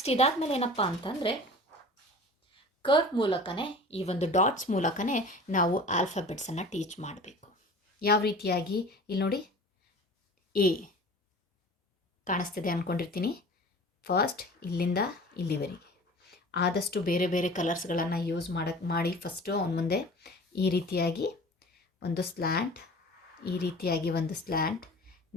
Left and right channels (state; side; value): normal; both; correlation 0.41